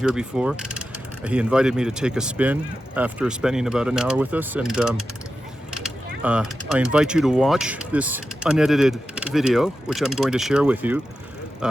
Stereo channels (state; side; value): normal; both; correlation 0.91